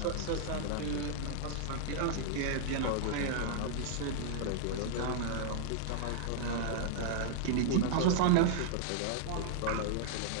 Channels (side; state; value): both; different; correlation 0.00